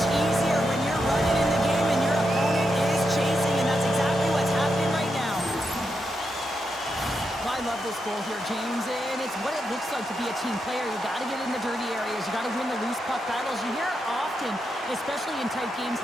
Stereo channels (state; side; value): normal; both; correlation 0.84